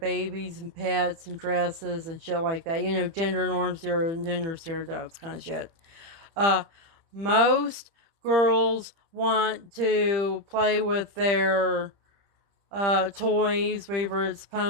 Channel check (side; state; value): left; late; 30 ms